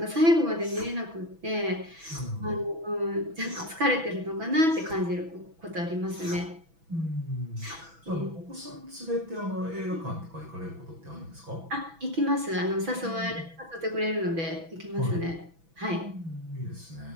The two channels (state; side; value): late; left; 6.1 ms